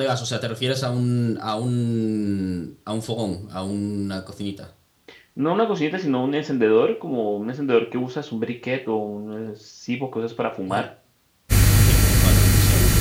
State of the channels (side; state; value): both; identical; correlation 1.00